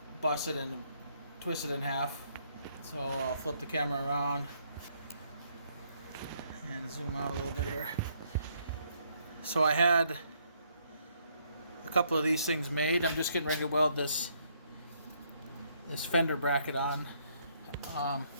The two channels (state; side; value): inverted; both; correlation -0.70